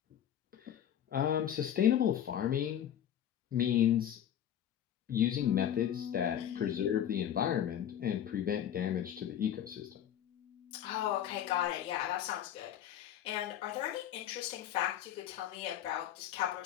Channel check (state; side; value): quieter; right; 10.4 dB